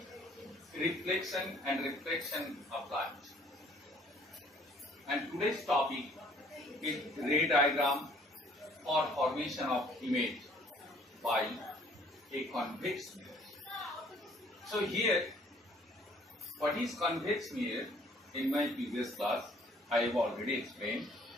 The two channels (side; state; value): both; normal; correlation 0.58